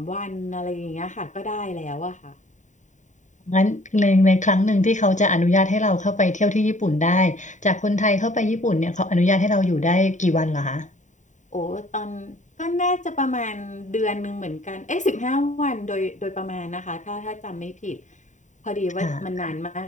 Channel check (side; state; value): right; late; 0.36 ms